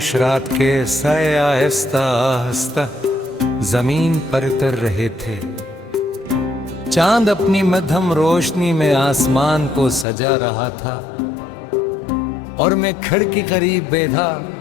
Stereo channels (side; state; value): right; drops out; at 10.1 s